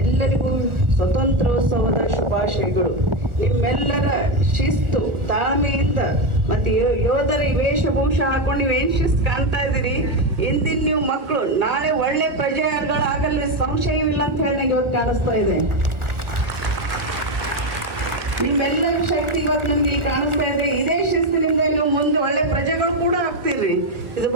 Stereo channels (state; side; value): late; left; 1.2 ms